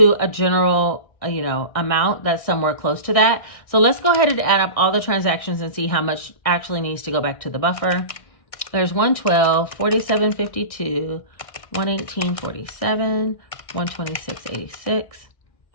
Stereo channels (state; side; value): late; right; 1.6 ms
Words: a general amount that's somewhere close to that. So let's go ahead and add up all the transactions and see how much actually needs to go back to the buffer. There's 112, 47.52, 118.47, 126.86,